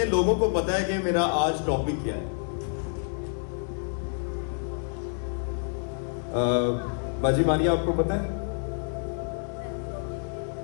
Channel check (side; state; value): right; silent; 59 dB below the other